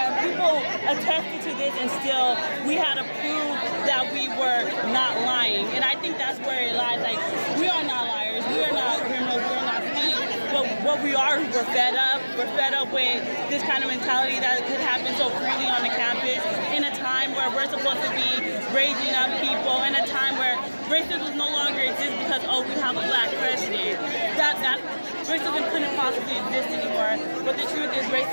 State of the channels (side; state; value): both; inverted; correlation -1.00